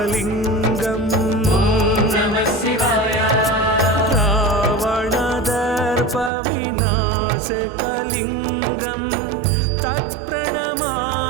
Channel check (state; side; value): drops out; left; at 6.3 s